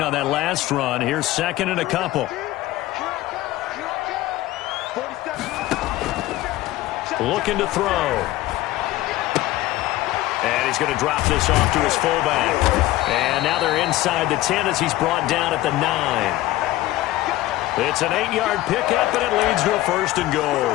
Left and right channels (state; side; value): quieter; right; 16.5 dB